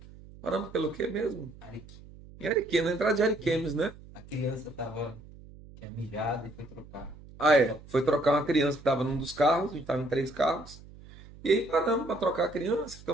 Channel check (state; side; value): noise; right; hum, 19 dB below the sound